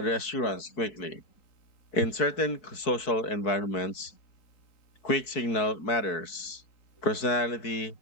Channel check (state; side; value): late; right; 4.6 ms